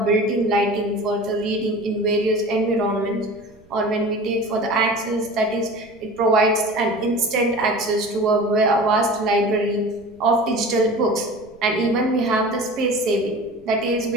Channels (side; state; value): right; noise; rumble, 28 dB below the sound